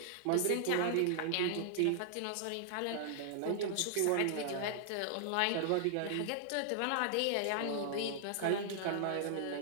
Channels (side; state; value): both; different; correlation -0.01